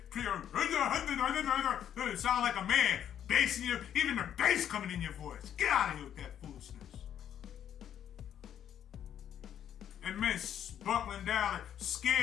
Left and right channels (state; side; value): quieter; right; 9.9 dB